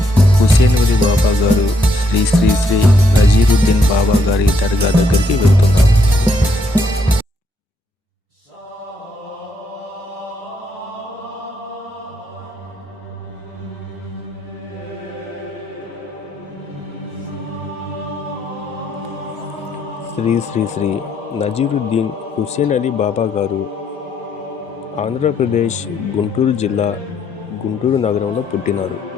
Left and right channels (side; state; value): both; normal; correlation 0.73